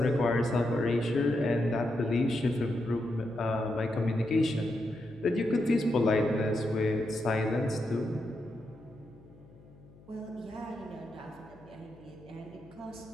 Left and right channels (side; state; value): left; noise; hum, 23 dB below the sound